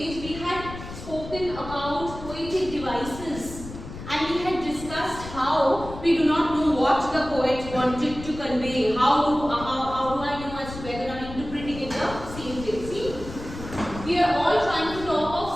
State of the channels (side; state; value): left; noise; rumble, 12 dB below the sound